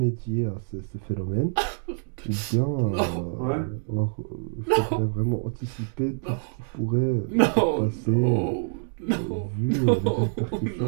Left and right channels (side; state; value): left; silent; digital silence